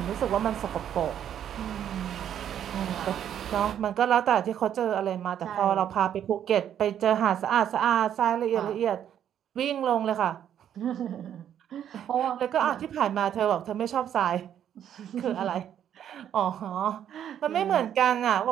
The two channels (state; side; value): quieter; left; 9.9 dB